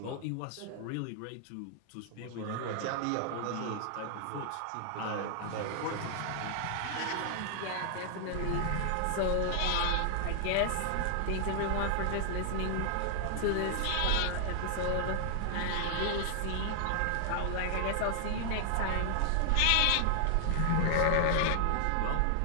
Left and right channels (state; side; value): different; both; correlation 0.00